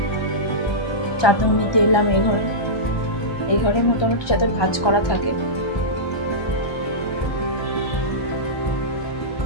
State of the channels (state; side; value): late; right; 1.2 ms